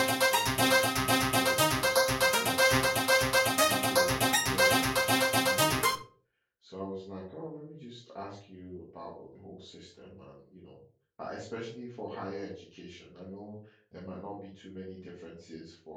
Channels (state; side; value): identical; both; correlation 1.00